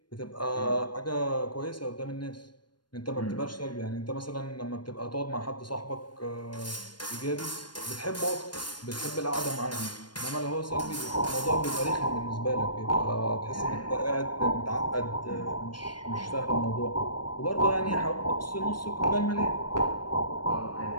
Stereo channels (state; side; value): late; right; 0.71 ms